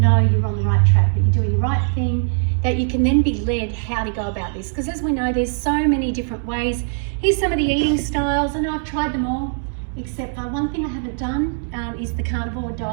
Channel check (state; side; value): silent; left; digital silence